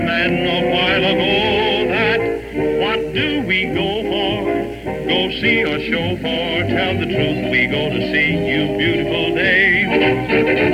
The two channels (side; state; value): both; identical; correlation 1.00